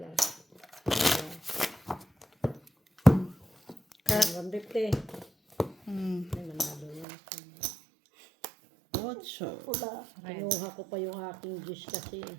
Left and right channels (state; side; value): drops out; left; at 7.1 s